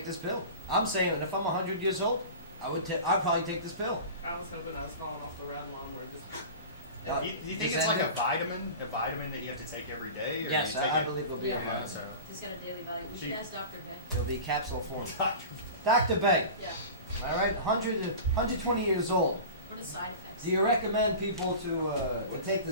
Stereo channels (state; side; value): inverted; both; correlation -0.34